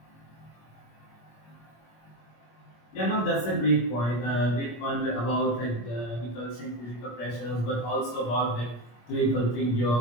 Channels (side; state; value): right; late; 25 ms